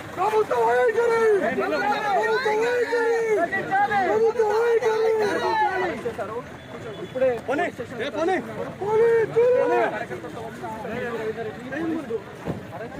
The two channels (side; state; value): both; identical; correlation 1.00